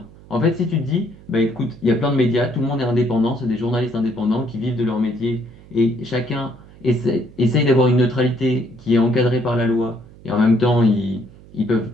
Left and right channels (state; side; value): noise; right; hum, 22 dB below the sound